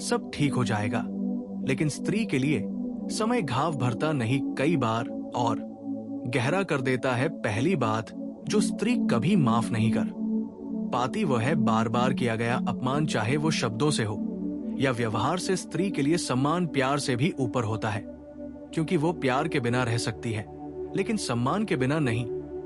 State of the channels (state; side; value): identical; both; correlation 1.00